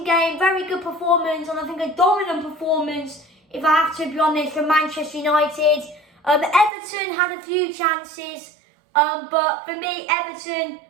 game, very good performance, and I think a dominant performance, if I have to be honest, from Manchester United. Everton had a few chances, but for me, Everton,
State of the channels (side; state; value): left; drops out; at 6.7 s